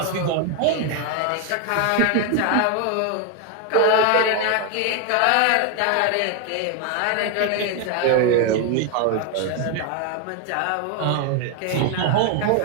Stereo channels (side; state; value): both; different; correlation 0.01